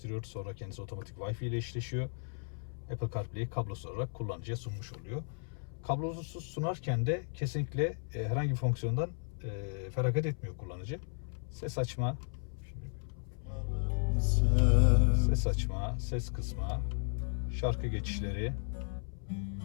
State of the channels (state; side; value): silent; right; 55 dB below the other